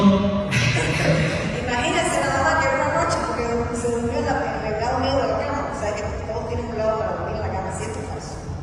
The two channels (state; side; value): identical; both; correlation 1.00